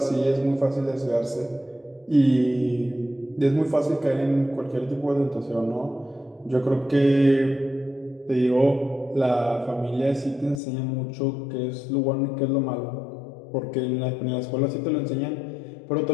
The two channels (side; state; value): right; drops out; at 10.6 s